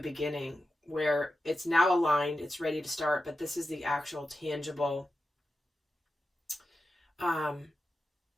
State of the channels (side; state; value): both; normal; correlation 0.91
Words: where it's now aligned, it's ready to start, but this is the actual tangible